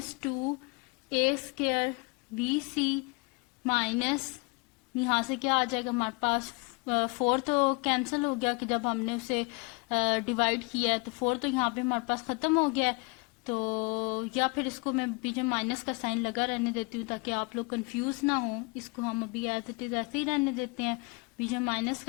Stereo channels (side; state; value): right; quieter; 29.5 dB